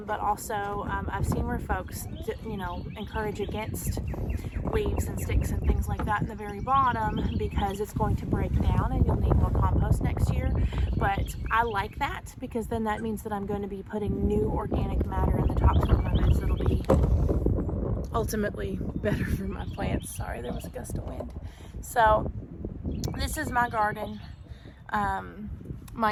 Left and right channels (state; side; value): identical; both; correlation 1.00